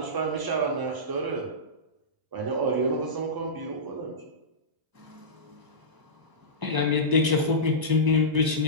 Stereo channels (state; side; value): late; left; 1.0 ms